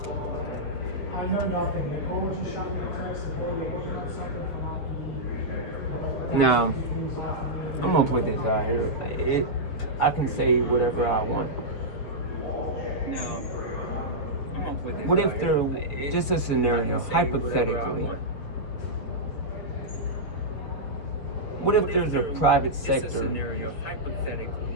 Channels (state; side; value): late; right; 7.3 ms